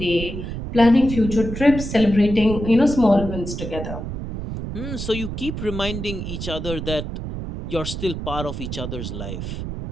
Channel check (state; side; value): noise; right; rumble, 6 dB below the sound